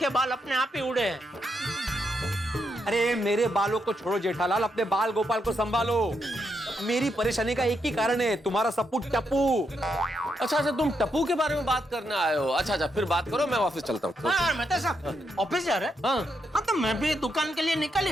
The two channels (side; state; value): both; normal; correlation 0.81